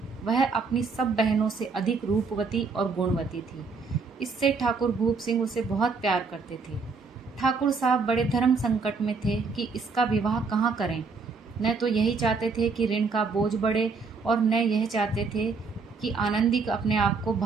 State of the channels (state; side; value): quieter; left; 4.7 dB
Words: वह अपनी सब बहनों से अधिक रूपवती और गुणवती थी। इससे ठाकुर भूप सिंह उसे बहुत प्यार करते थे। ठाकुर साहब बड़े धर्म संकट में थे कि इसका विवाह कहाँ करें। न तो यही चाहते थे कि ऋण का बोझ बढ़े, और न यह चाहते थे कि आनंदी अपने आप को